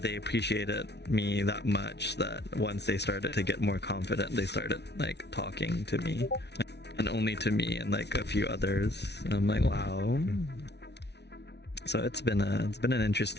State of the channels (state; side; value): late; right; 0.50 ms